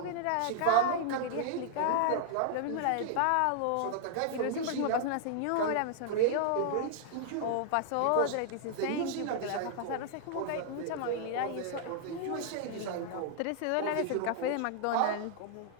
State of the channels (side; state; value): both; different; correlation -0.01